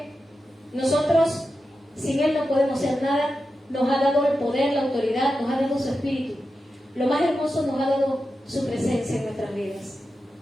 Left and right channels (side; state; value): both; normal; correlation 0.90